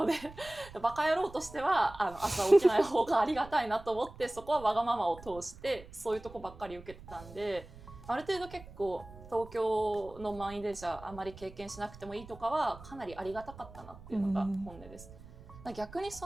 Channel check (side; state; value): right; noise; rumble, 17 dB below the sound